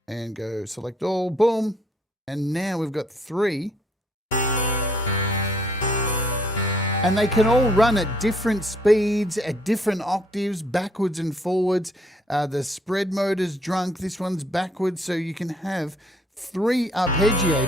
and go select all, boom. And now we've got 3. And they can all run at different speeds, at different octaves, backwards and forwards. The spread mode is drunk, this one's backwards. So you can have 3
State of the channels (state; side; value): normal; both; correlation 0.65